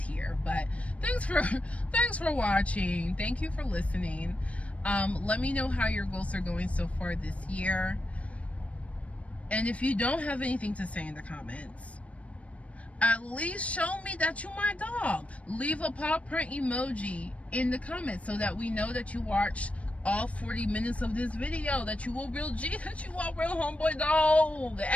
but thanks for watching. Thank you for listening. Let me know how your goals are going so far this year. And if you don't have anything to say in the comments, at least show me that you my dog. Leave a paw print emoji in the comments so that we know that you watched all 40 minutes of this video, that you a real G, that you a real homeboy dog.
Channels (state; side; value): late; right; 0.064 ms